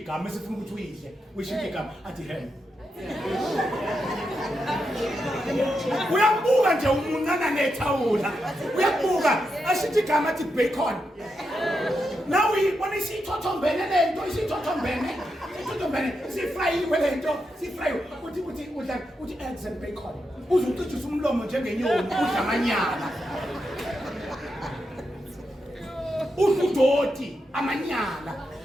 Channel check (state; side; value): normal; both; correlation 0.85